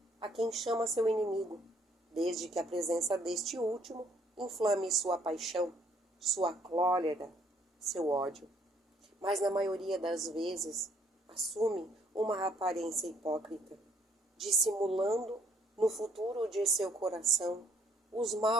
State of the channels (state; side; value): normal; both; correlation 0.65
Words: a quem chama seu inimigo, desde que a presença deste último inflame sua paixão, sua cólera, seu ódio. Mas na maioria das vezes assume uma aparência hipócrita, dissimulando no futuro de seu coração os